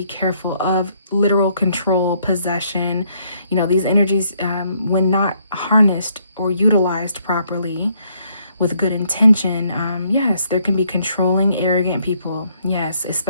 careful of literal control, possession. You know, these energies, when not harnessed or utilized properly with good intention, yes, there can be controlling, arrogant people. Yes,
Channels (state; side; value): inverted; both; correlation -0.69